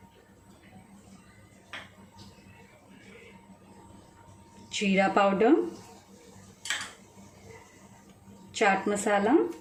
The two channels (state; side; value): identical; both; correlation 1.00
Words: Jeera powder. Chaat masala.